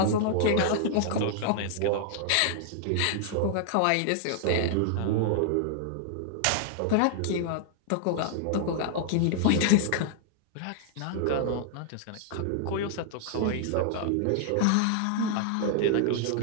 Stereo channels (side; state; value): both; different; correlation -0.01